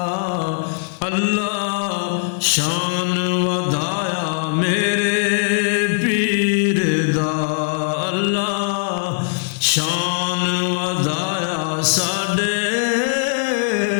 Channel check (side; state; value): right; silent; digital silence